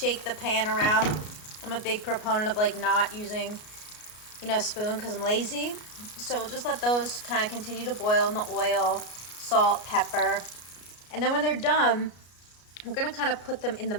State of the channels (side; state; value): right; late; 33 ms